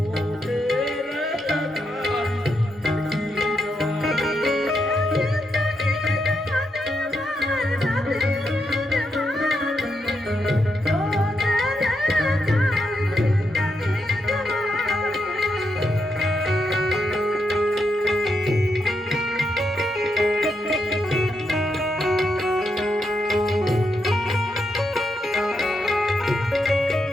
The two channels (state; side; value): normal; both; correlation 0.82